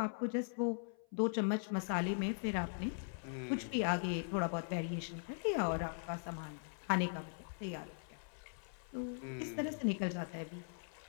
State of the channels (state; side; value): silent; right; 51 dB below the other